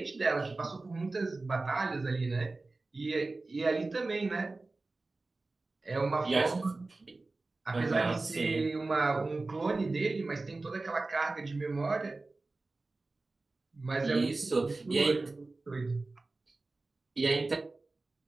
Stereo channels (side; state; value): left; quieter; 3.4 dB